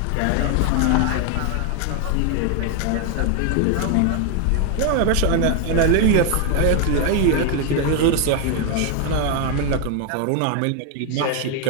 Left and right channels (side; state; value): both; different; correlation 0.01